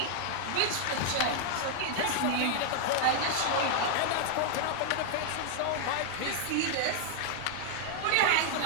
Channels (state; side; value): different; both; correlation 0.00